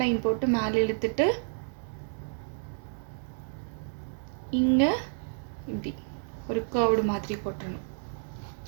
லைன் போட்டு மேலே இழுத்துட்டு இங்கே இப்படி ஒரு கர்வ்டு மாதிரி போட்டுடணும்.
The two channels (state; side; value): silent; left; digital silence